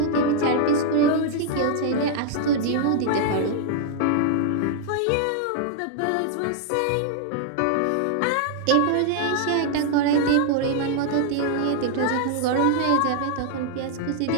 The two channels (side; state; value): both; different; correlation 0.00